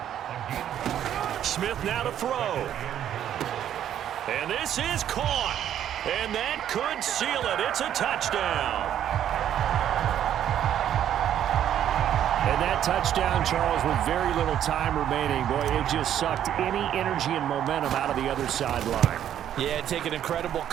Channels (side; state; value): left; quieter; 10.5 dB